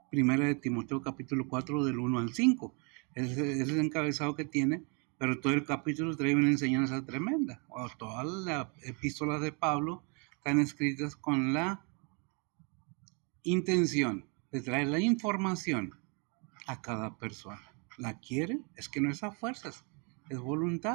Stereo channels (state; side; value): quieter; left; 34.6 dB